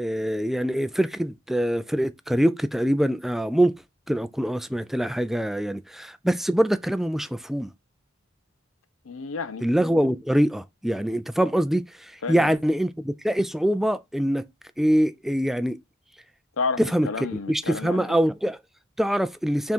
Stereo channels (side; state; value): both; normal; correlation 0.92